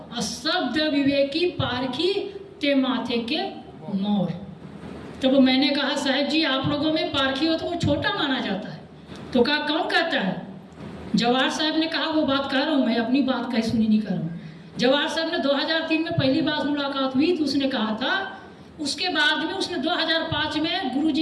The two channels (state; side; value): identical; both; correlation 1.00